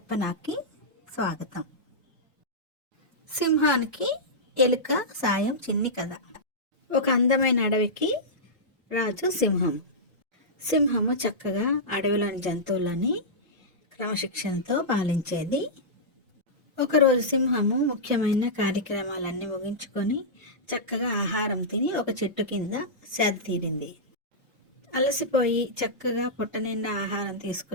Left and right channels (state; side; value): normal; both; correlation -0.13